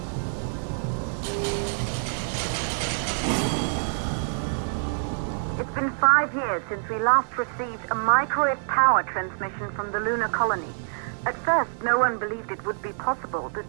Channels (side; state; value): left; silent; digital silence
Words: It's been 5 years since we last received a microwave power transmission from the lunar colony. At first, no one believed it would be possible to